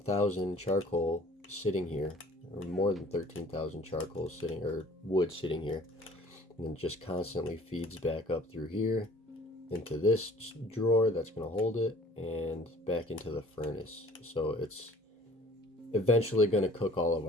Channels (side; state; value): both; normal; correlation 0.51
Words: charcoal sitting here, or more than 13,000 charcoal sitting, or wood sitting here, and then just constantly feeds back up through here into this drawer that's going to hold it and back into the furnace. So it's eventually going to cook all of